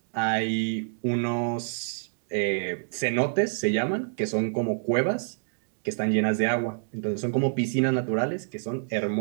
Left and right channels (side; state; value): left; silent; digital silence